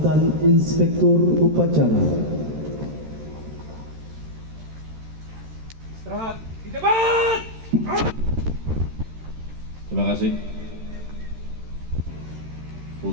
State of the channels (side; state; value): left; late; 13 ms